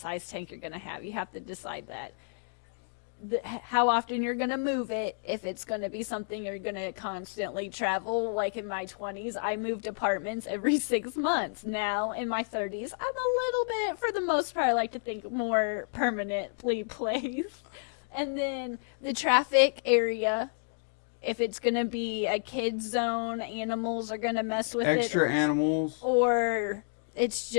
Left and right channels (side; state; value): right; silent; digital silence